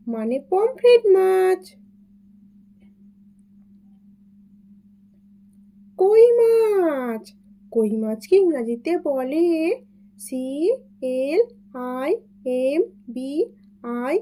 মানে পমফ্রেট মাছ। কই মাছ, কই মাছকে ইংরাজিতে বলে CLIMBING,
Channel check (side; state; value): both; identical; correlation 1.00